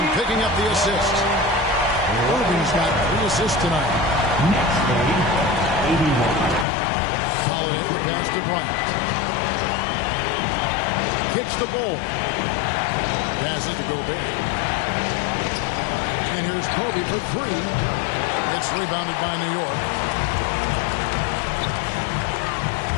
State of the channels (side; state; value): right; drops out; at 6.7 s